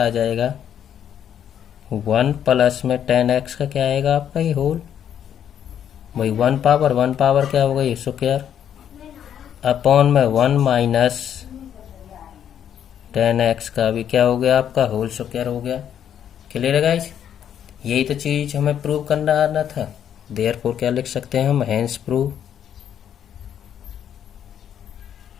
आ जाएगा 1 प्लस में 10x का क्या आएगा आपका ये होल भाई 1 पावर क्या होगा ये स्क्वायर अपॉन में 1 माइनस 10x का भी क्या हो गया आपका होल स्क्वायर हो गया। क्लियर है गाइज। यही तो चीज हमें प्रूव करना आना था। देयरफॉर क्या लिख सकते हैं हम हेंस प्रूव।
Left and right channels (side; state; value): right; quieter; 9.4 dB